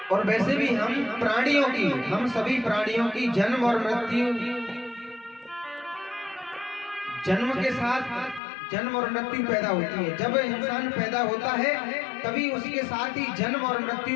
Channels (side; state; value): right; drops out; at 8.4 s